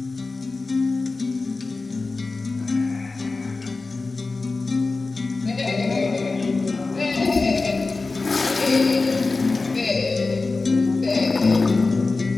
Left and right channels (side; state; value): right; quieter; 3.7 dB